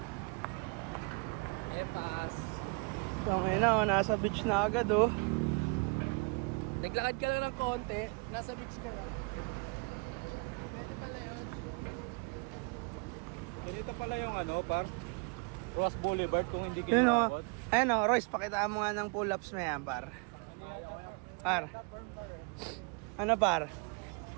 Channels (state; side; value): quieter; left; 32.4 dB